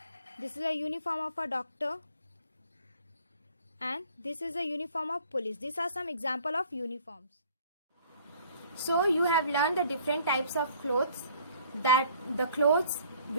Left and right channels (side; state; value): both; inverted; correlation -0.55